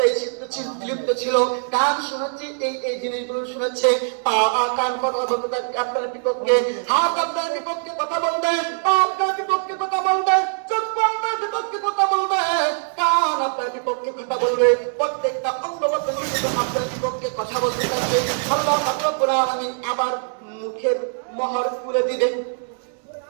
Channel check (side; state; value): left; silent; 64 dB below the other